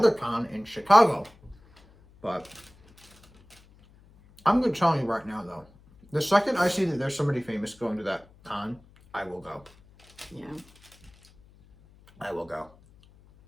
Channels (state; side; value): noise; left; hum, 27 dB below the sound